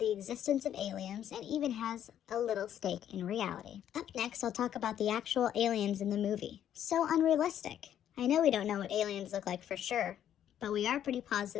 existence of aliens and even has a little stake in reality. Up next, I'll talk about the actual aliens in the movie. So unrealistic. I know we don't know what aliens look like for sure, but we are pretty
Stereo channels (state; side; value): quieter; right; 10.4 dB